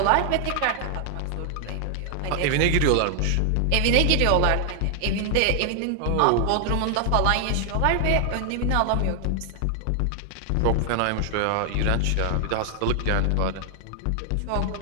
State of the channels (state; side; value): different; both; correlation 0.00